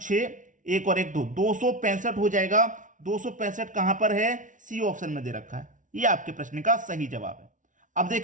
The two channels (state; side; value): late; left; 0.37 ms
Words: 1 और 1 2, 265 हो जाएगा। 265 कहां पर है, सी ऑप्शन में दे रखा है। ये आपके प्रश्न का सही जवाब है। अब